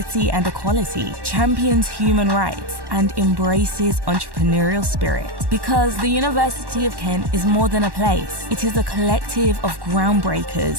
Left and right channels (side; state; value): left; late; 1.1 ms